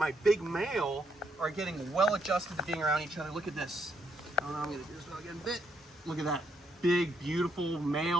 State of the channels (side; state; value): both; normal; correlation 0.75